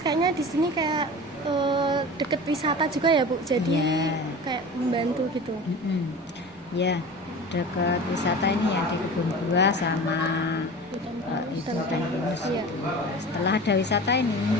di sini kayak deket wisata juga ya Bu, jadi Iya. kayak membantu gitu. Ya, dekat wisata ini ya, di Kebun Buah sama itu hutan pinus. Iya. Setelah ada wisata ini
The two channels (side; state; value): left; noise; rumble, 29 dB below the sound